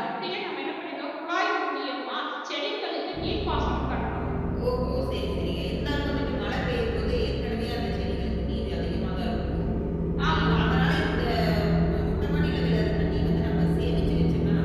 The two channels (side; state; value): both; identical; correlation 1.00